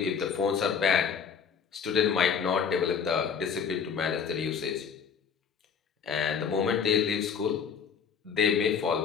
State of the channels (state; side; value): quieter; right; 6.7 dB